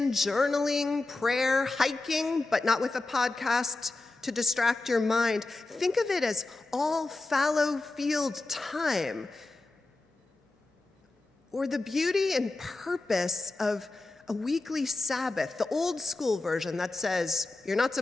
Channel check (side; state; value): right; quieter; 3.2 dB